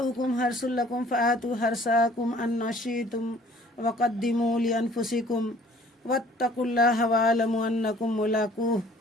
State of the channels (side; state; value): both; normal; correlation 0.54